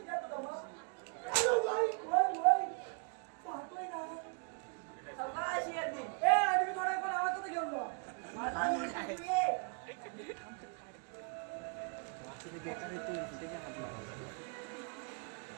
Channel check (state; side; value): quieter; left; 37.1 dB